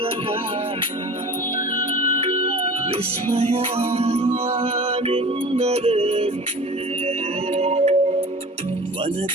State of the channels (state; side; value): normal; both; correlation 0.39